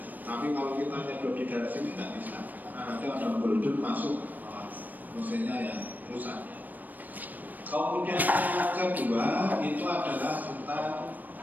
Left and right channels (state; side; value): late; left; 0.085 ms